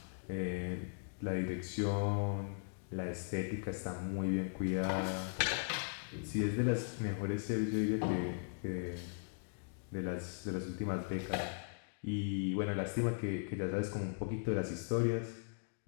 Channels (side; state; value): right; silent; digital silence